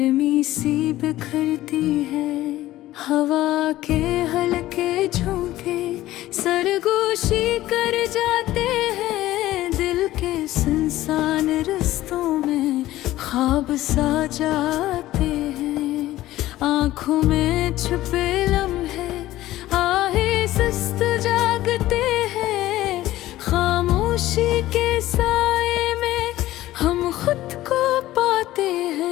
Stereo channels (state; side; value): quieter; right; 15.5 dB